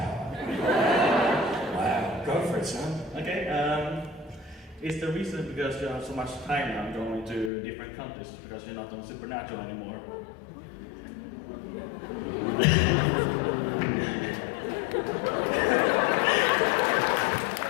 Wow, go for it, son. Okay. Is the reason because you have so much time now going to different countries because you're not on Supernatural anymore?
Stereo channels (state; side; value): drops out; right; at 7.5 s